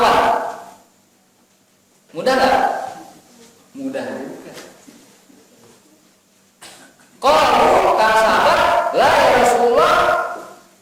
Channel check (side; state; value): both; identical; correlation 1.00